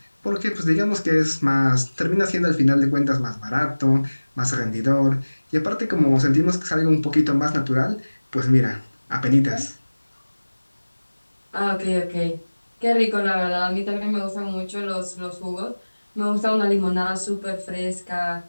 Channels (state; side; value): inverted; both; correlation -1.00